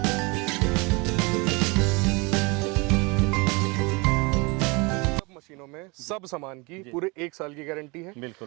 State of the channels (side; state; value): left; quieter; 27.5 dB